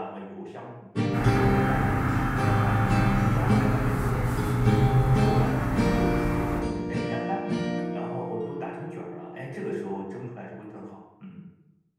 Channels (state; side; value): identical; both; correlation 1.00